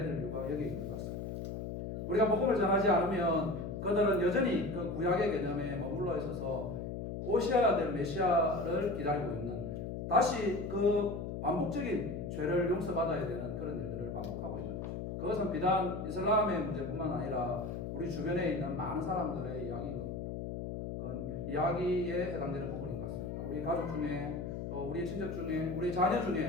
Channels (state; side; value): noise; left; hum, 5 dB below the sound